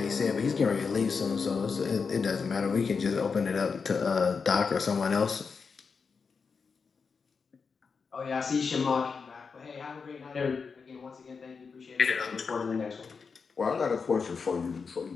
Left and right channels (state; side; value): quieter; right; 5.3 dB